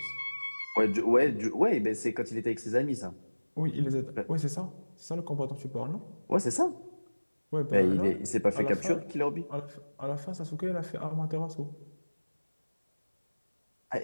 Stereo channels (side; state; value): both; inverted; correlation -1.00